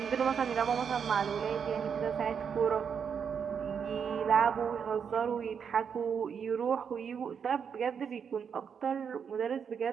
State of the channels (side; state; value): left; quieter; 7.0 dB